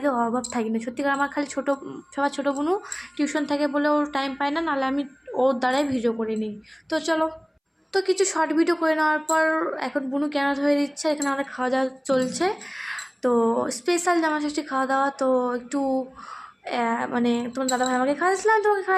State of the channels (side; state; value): both; identical; correlation 1.00